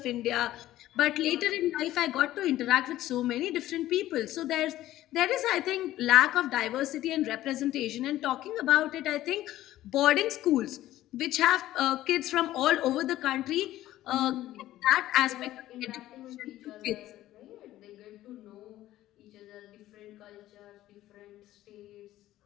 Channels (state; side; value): quieter; right; 14.5 dB